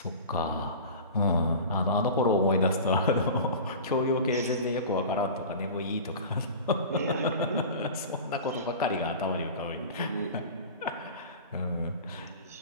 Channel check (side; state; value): both; inverted; correlation -0.36